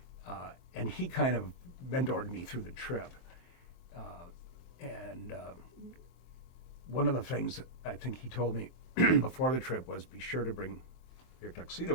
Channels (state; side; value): late; right; 23 ms